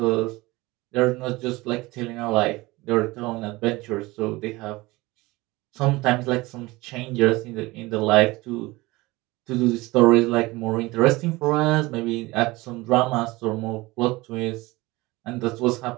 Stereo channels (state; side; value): quieter; left; 21.2 dB